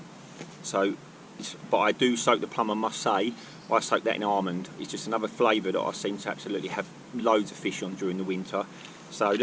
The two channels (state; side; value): identical; both; correlation 1.00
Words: So, but I do soak the plum, I must say. I soak that in almond. It's just another flavour that I seem to absolutely have loads of fish on during the winter. So